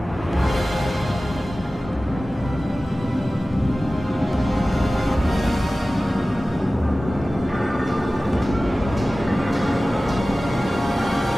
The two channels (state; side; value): normal; both; correlation 0.96